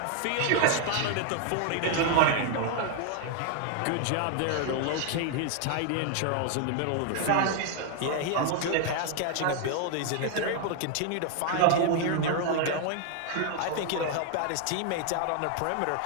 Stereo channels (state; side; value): different; both; correlation 0.00